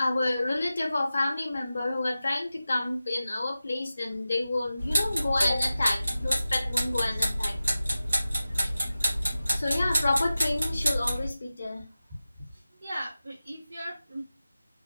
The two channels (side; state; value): both; inverted; correlation -0.95